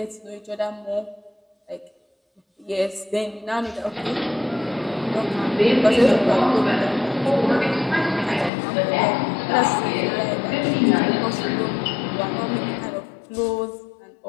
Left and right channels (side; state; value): right; drops out; at 8.5 s